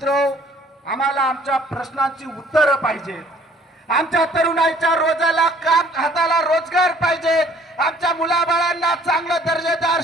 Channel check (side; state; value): both; normal; correlation 0.57